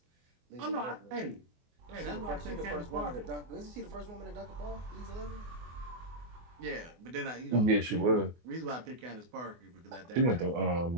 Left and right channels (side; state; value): left; late; 24 ms